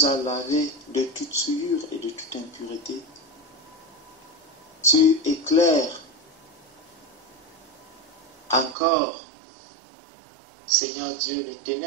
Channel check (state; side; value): drops out; left; at 8.8 s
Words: as lavé de toute souillure et de toute impureté. Tu éclaires encore, Seigneur Dieu, les